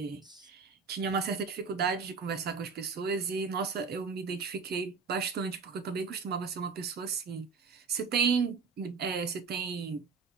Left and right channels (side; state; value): left; quieter; 5.2 dB